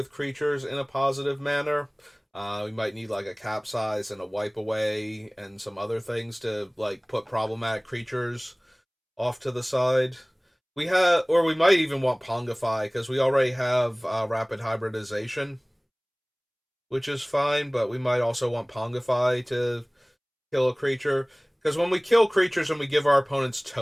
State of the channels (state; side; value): identical; both; correlation 1.00